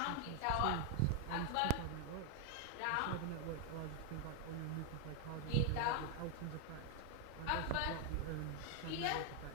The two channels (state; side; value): different; both; correlation 0.00